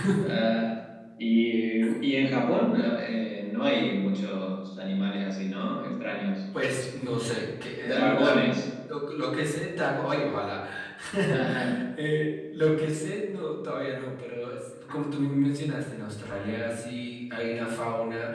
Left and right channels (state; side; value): identical; both; correlation 1.00